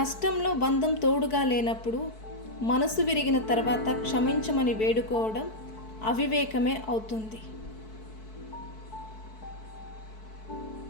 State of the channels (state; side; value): late; right; 4.6 ms